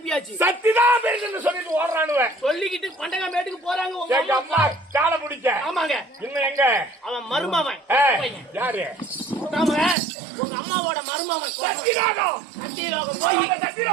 சத்திதான் பேசுன்னு சொல்லிட்டு ஓடுறானுவன். சொல்லிக்கிட்டு பண்டகா மேட்டுக்கு போறாங்க. எங்க அம்மா காலை பிடிக்க. ஆமாங்க. இன்னும் எங்க அவன் மருமவன். யாரு? உங்க அம்மாவோட மருமவன் சத்தியலோகம். சத்தியலோகம் போய்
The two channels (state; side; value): drops out; left; at 10.0 s